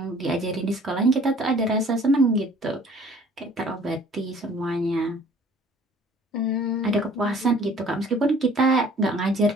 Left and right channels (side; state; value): both; normal; correlation 0.53